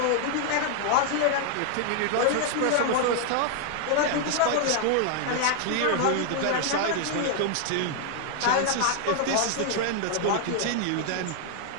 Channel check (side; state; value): both; different; correlation 0.00